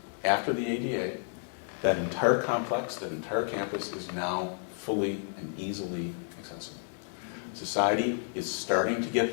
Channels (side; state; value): right; silent; digital silence